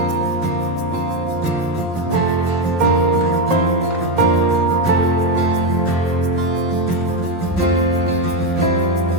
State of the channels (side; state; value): both; normal; correlation 0.08